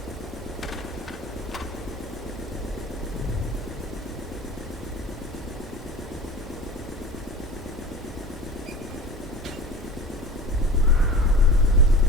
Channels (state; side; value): normal; both; correlation 0.37